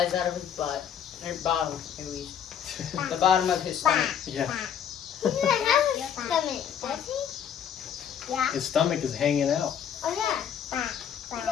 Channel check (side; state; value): right; quieter; 8.6 dB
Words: out of his butt. Or bottom, at least. The bottom of his stomach. Yeah. He doesn't have a stomach, does he? Yeah. His stomach is hanging out. Oh, yeah. He